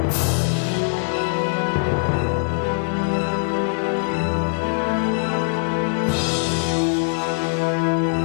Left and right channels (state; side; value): silent; right; digital silence